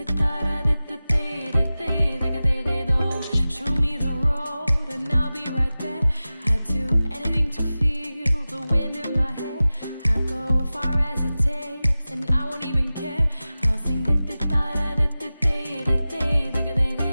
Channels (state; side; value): inverted; both; correlation -0.96